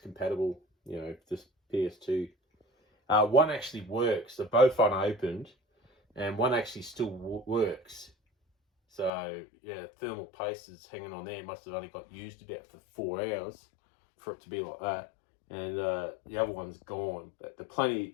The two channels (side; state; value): right; drops out; at 9.1 s